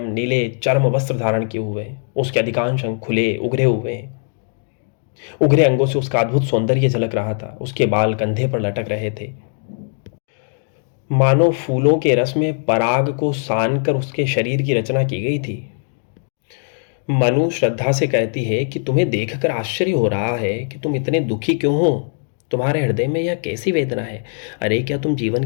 नीले चर्म वस्त्र धारण किए हुए हैं। उसके अधिकांश अंग खुले उघरे हुए हैं। उघरे अंगों से उसका अद्भुत सौंदर्य झलक रहा था। उसके बाल कंधे पर लटक रहे थे। मानो फूलों के रस में पराग को सान कर उसके शरीर की रचना की गई थी। मनु श्रद्धा से कहती है कि तुम्हें देखकर आश्चर्य हो रहा है कि तुम इतने दुखी क्यों हो। तुम्हारे हृदय में यह कैसी वेदना है। अरे क्या तुम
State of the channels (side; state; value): right; silent; 66 dB below the other